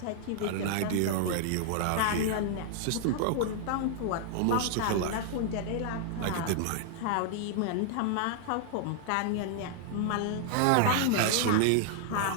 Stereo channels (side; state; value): both; different; correlation -0.01